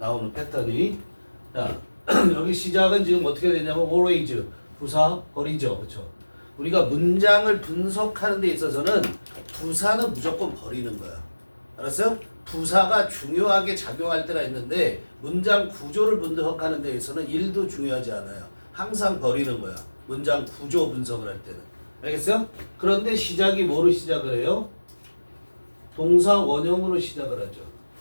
패턴이. 자, 여기 시작은 지금 어떻게 되냐면 always, 부사, 버리죠. 그렇죠? 우리가 문장을 분석하는 데 있어서는 부사는 무조건 버리는 거야. 알았어요? 부사가 중요하게 작용할 때가 있는데 문장 구조를 분석하는 데 있어서는 일도 중요하지 않아요. 항상 버리는 거야. 문장 구조 분석을 할 때는. 알겠어요? 그런데 시작이 뭐로 시작을 해요? 동사 원형으로 시작을 하죠.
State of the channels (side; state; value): both; inverted; correlation -1.00